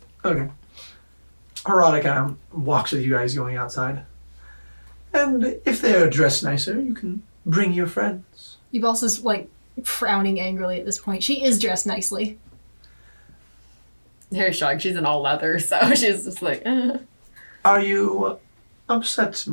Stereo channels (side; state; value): both; inverted; correlation -1.00